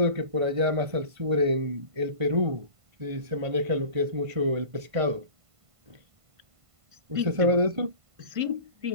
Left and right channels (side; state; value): left; late; 1.5 ms